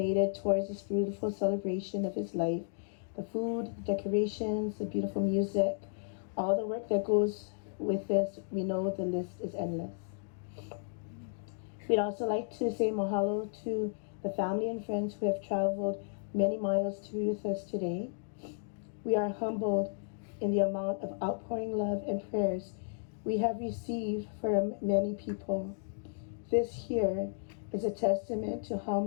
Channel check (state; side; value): silent; right; digital silence